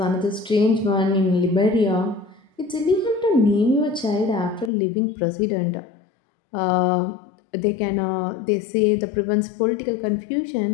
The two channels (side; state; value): right; drops out; at 4.7 s